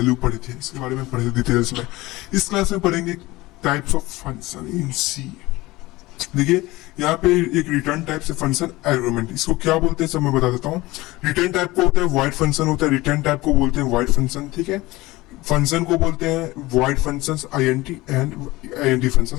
पढ़े थे, इसके बारे में पढ़े थे डिटेल्स में। इस क्लास में पढ़ेंगे टाइप्स ऑफ फंक्शन इन सी। देखिए यहाँ पे एक रिटर्न टाइप से फंक्शन आर्गुमेंट, इसको क्या बोलते हैं सब मैं बता देता हूँ। रिटर्न टाइप को होता है वॉइड फंक्शन होता है, रिटर्न टाइप को बोलते हैं वॉइड फंक्शन, ठीक है। फंक्शन को बोलते हैं void functions INT and INT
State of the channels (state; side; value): quieter; right; 19.8 dB